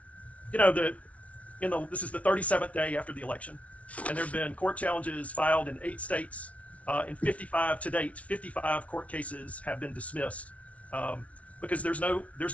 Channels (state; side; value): late; right; 0.065 ms